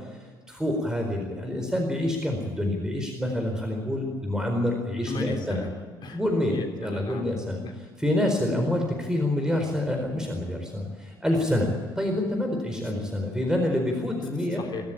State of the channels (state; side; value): normal; both; correlation 0.75